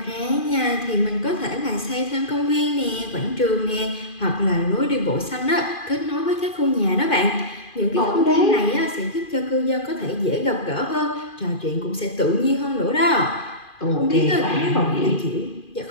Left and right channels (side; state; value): right; late; 2.4 ms